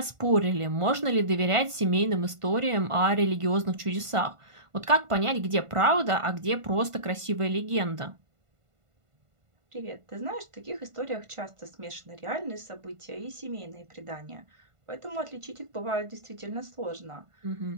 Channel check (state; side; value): late; left; 1.5 ms